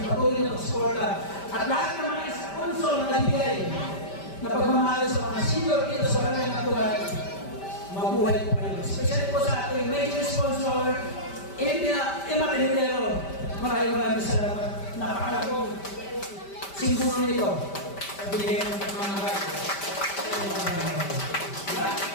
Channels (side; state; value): right; late; 5.1 ms